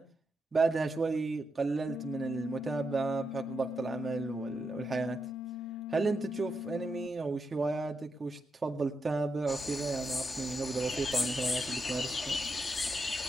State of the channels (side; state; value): both; normal; correlation 0.85